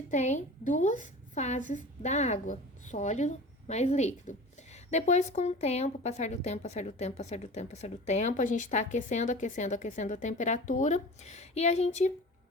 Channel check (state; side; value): normal; both; correlation 0.37